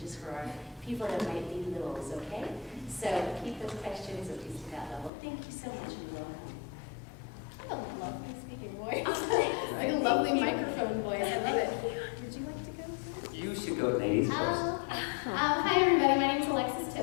for our people that might be littles, okay? So keep those questions at least at that level. Thank you so much and welcome. I love my speaking voice. Like a lovely microphone voice. I love it. Would you like to go first? You should go ladies first. Hi everybody, my name is Alexis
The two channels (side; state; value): right; drops out; at 5.1 s